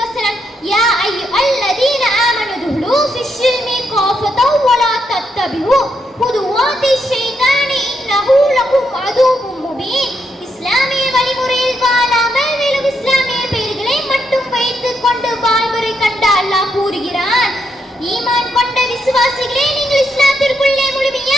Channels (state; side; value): normal; both; correlation 0.79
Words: யா அய்யுஹல்லதீன ஆமனு துஹுலு ஃபிஸ்ஸில்மி காஃபதன் வ லா தத்தபிஉ குதுவாத்தி ஷைத்தானி இன்னஹு லகும் அதுவும் முபீன். இஸ்லாமிய வழிமுறையில் வாழாமல் வெறும் இஸ்லாமிய பெயர்களை மட்டும் வைத்துக் கொண்டு வாழ்முறை கண்ட அல்லாஹ் கூறுகிறான், ஈமான் கொண்ட விசுவாசிகளே, நீங்கள் இஸ்லாத்திற்குள்ளே